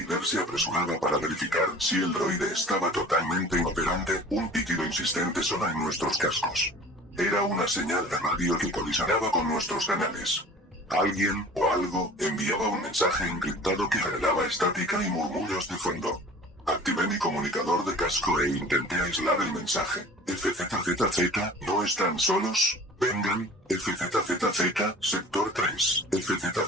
se apresuraba para verificar si el droide estaba totalmente inoperante, un pitido insistente sonó en nuestros cascos. Era una señal de radio que colisionaba con nuestros canales. Alguien, o algo, enviaba un mensaje encriptado que generaba estática y murmullos de fondo. Activé mi comunicador de casco e intenté aislar el mensaje. FZZZ, ¿no están solos? Vengan, FZZZ, sector 3.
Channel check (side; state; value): both; normal; correlation 0.43